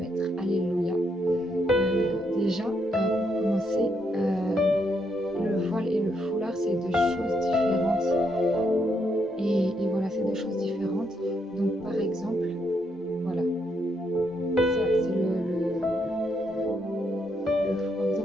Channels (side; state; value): both; normal; correlation 0.77